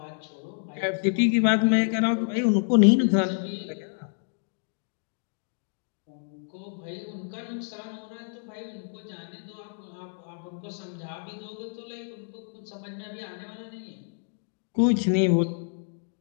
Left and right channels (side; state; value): right; silent; digital silence